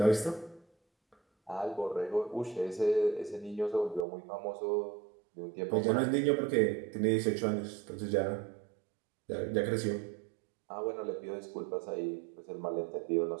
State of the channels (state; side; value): drops out; left; at 4.0 s